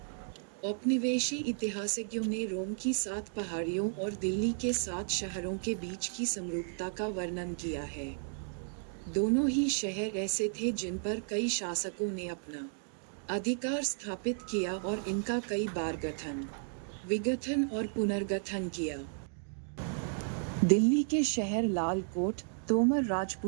औपनिवेशी इतिहासज्ञों ने रोम की 7 पहाड़ियों और दिल्ली के 7 शहरों के बीच की समरूपता का वर्णन किया है। दोनों ही शहर ऐसे थे जिन पर कई शासकों ने अपना अधिकार स्थापित किया और इनका कई बार गठन, विघटन और पुनर्गठन किया। दिल्ली के शहर लाल कोट तोमर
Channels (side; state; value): left; silent; digital silence